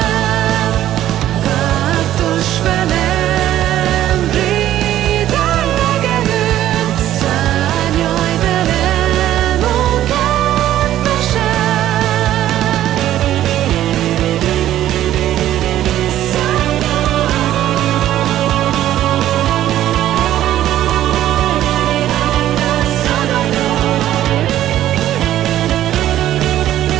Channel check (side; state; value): left; quieter; 12.7 dB